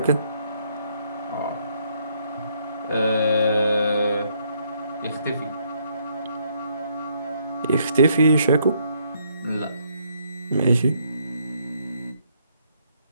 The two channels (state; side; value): inverted; both; correlation -0.71